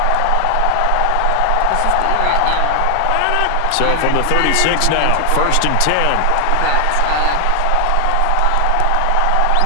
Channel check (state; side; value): different; both; correlation 0.00